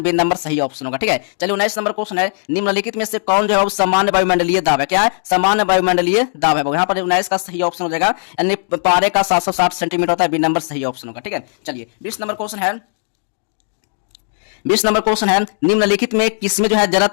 बी नंबर सही ऑप्शन होगा। ठीक है, चलिए 19 नंबर क्वेश्चन है, निम्नलिखित में से कौन जो है सामान्य वायुमंडलीय दाब है, क्या है, सामान्य वायुमंडलीय दाब है, यहाँ पर 19 का सही ऑप्शन हो जाएगा, यानी पारे का 760 सेंटीमीटर होता है, बी नंबर सही ऑप्शन होगा। ठीक है, चलिए 20 नंबर क्वेश्चन है, 20 नंबर क्वेश्चन है, निम्नलिखित में किसमें जो है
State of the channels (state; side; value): silent; right; digital silence